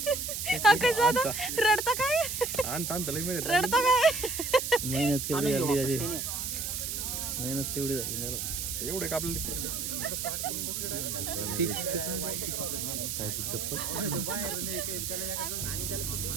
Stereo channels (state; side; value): noise; right; hiss, 3 dB below the sound